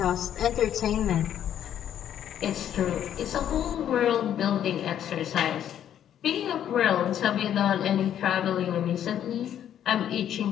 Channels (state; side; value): quieter; right; 10.2 dB